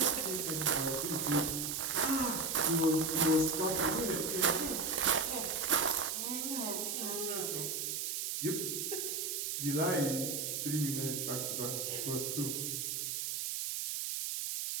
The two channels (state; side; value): noise; right; hiss, 2 dB below the sound